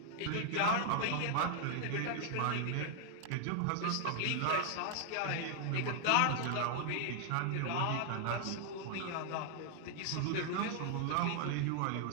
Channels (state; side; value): different; both; correlation 0.00